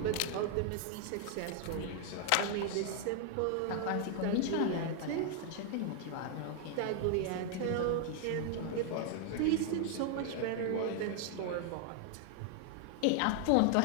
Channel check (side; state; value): both; different; correlation 0.00